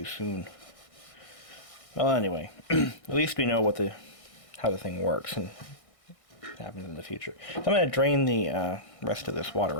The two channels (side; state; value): right; late; 1.6 ms